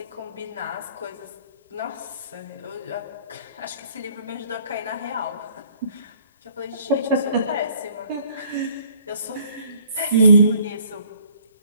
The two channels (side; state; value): both; inverted; correlation -0.59